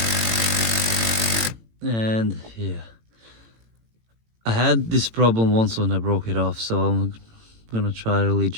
and yeah, I had this problem once when I broke it off, so I'm gonna try really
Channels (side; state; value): left; late; 18 ms